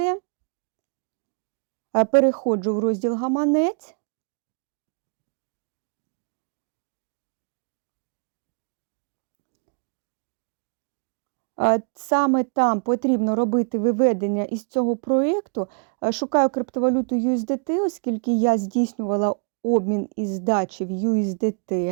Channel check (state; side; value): quieter; left; 39.8 dB